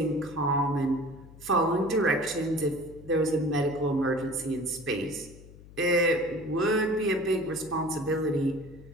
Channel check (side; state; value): left; noise; hum, 20 dB below the sound